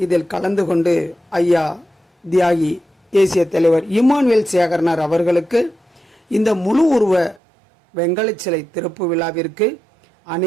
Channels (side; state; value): left; drops out; at 7.4 s